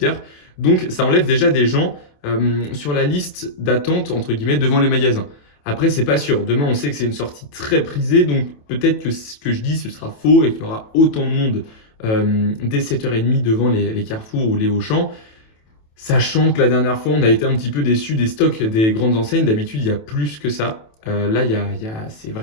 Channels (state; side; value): late; right; 27 ms